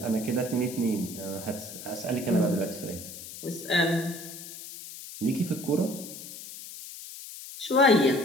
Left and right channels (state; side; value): noise; left; hiss, 12 dB below the sound